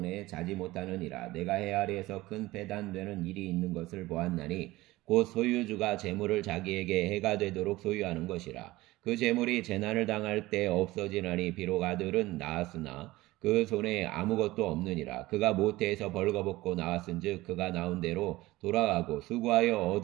자지 못하느니라. 내가 해 아래에서 큰 배단되는 일이 있는 것을 보았나니 곧 소유주가 재물을 자기에게 해가 되도록 소유하는 것이라. 그 재물이 재난을 당할 때 없어지나니 비록 아들은 낳았으나 그 손에 아무것도 없느니라. 그가 모태에서 벌거벗고 나왔은즉 그가 나온 대로 돌아가고 수고하여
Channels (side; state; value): left; quieter; 18.7 dB